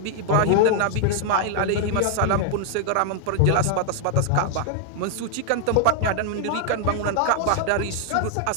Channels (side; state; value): both; different; correlation 0.00